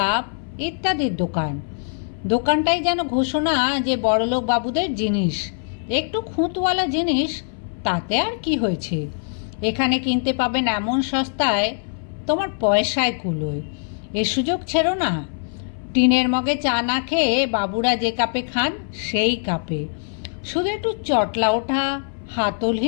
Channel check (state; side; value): silent; right; 60 dB below the other